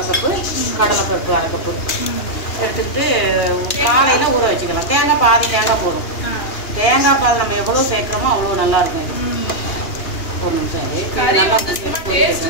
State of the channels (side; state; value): right; late; 2.8 ms